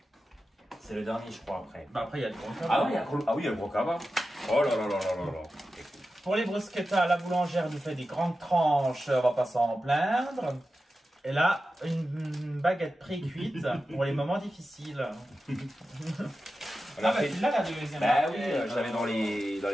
C'est le dernier, je crois, après. Bah après, il y a le gros cabas. Ah oui, il y a le gros cabas. Oh là là là là là là. Pour les bruschettas, la boulangère nous fait des grandes tranches, on va pas s'en plaindre. Et là, une baguette pré-cuite pour les moments difficiles. Là, la deuxième. Bah oui, je l'avais dans les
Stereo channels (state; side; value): normal; both; correlation 0.93